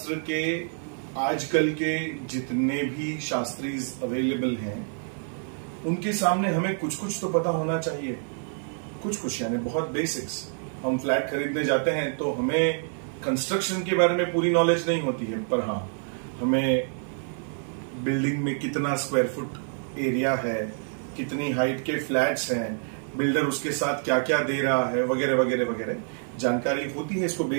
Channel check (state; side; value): silent; left; 60 dB below the other